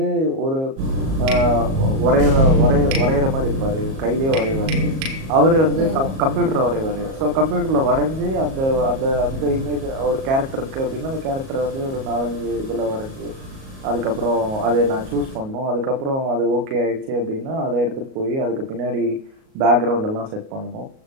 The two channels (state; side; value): late; left; 37 ms